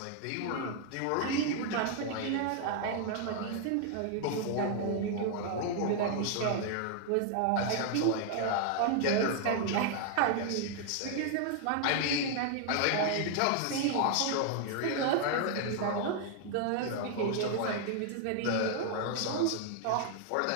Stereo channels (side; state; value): both; different; correlation 0.00